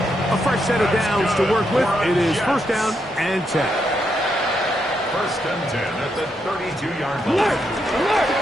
A fresh set of downs to work with. It is 1st down and 10. 1st and 10 at the 32-yard line.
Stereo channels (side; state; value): both; normal; correlation 0.80